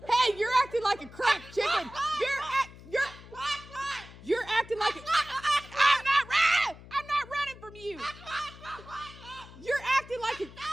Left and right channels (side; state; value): left; noise; hum, 18 dB below the sound